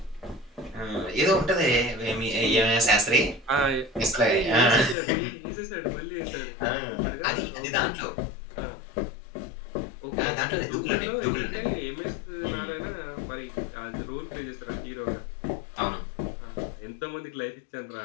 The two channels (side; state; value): right; drops out; at 5.0 s